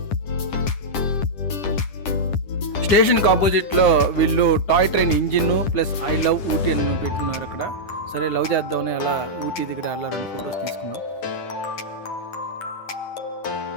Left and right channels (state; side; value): late; right; 10 ms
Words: స్టేషన్కి ఆపోజిట్లో వీళ్ళు toy train engine plus I love Ooty అని పెట్టున్నారు అక్కడ. సరే లవ్ చేద్దామని అలా ఊటీ దగ్గర అలా 2 ఫొటోస్ తీసుకున్నాం.